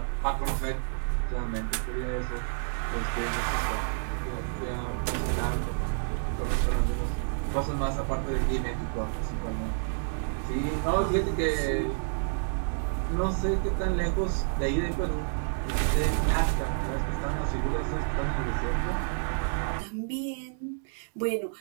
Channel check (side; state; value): left; silent; digital silence